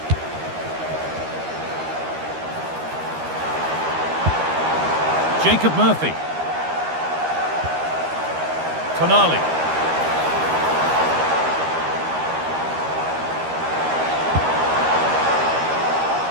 Jacob Murphy. Tonali.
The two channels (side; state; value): left; late; 13 ms